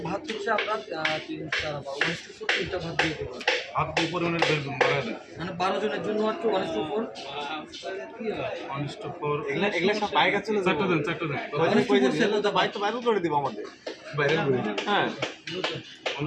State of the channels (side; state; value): both; identical; correlation 1.00